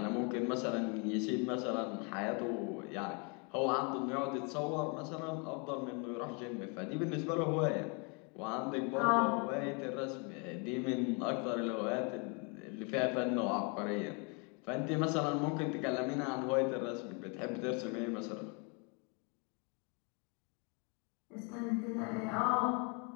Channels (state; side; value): quieter; right; 34.0 dB